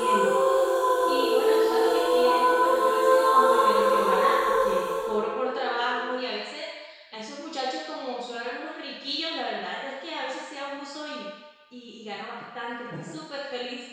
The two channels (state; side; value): identical; both; correlation 1.00